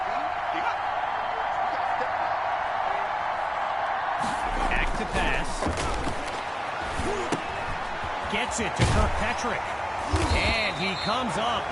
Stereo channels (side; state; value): both; identical; correlation 1.00